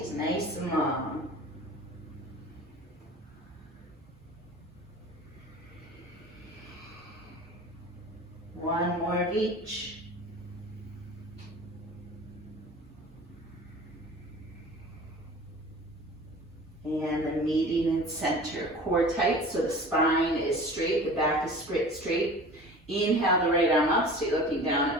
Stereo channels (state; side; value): normal; both; correlation 0.40